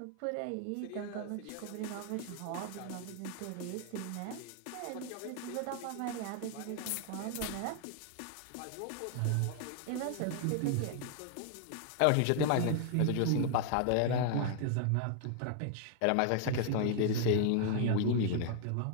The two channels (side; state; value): both; different; correlation 0.00